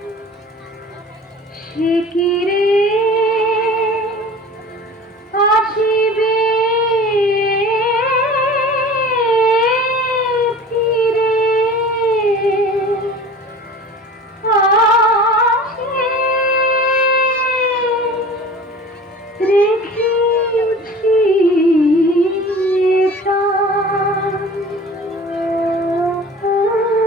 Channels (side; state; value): both; normal; correlation 0.40